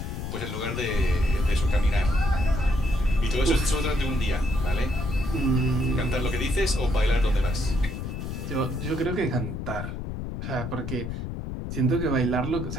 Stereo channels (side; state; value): left; noise; rumble, 5 dB below the sound